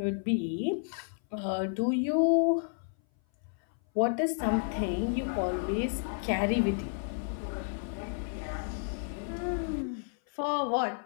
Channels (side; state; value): right; silent; 57 dB below the other